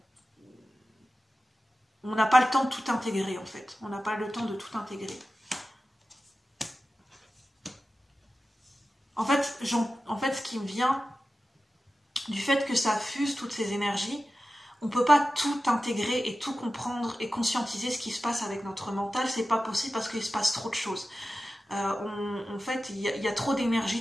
on n'a pas le temps de tout intégrer en fait. On n'a pas le temps de tout intégrer. En fait, ce qui me vient du fait que ça fuse toutes ces énergies, on ne peut pas tout intégrer et tout comprendre et conscientiser ce qui se passe avec notre mental. C'est pas possible parce qu'il se passe trop de choses. En fait, il y a trop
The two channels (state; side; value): normal; both; correlation 0.94